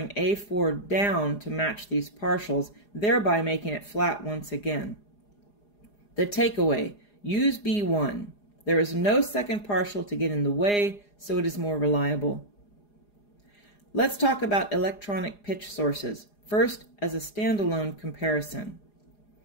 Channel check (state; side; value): late; right; 4.9 ms